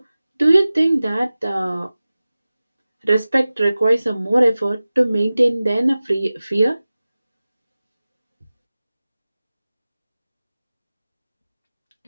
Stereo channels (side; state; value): both; inverted; correlation -0.97